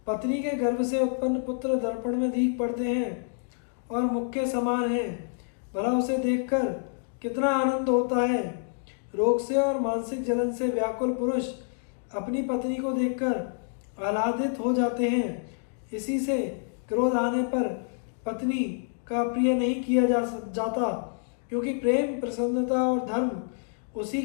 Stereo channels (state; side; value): silent; right; digital silence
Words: पत्नी के गर्भ से उत्पन्न पुत्र दर्पण में दीख पड़ते हैं और मुख के समान हैं। भला उसे देखकर कितना आनंद होता है। रोग से और मानसिक जलन से व्याकुल पुरुष अपनी पत्नी को देखकर आह्लादित हो जाते हैं। इसी से क्रोध आने पर पत्नी का प्रिय नहीं किया जाता, क्योंकि प्रेम, प्रसन्नता और धर्म उसी